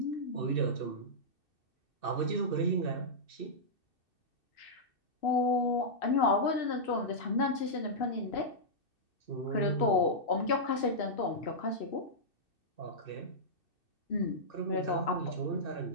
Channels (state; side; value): late; right; 2.6 ms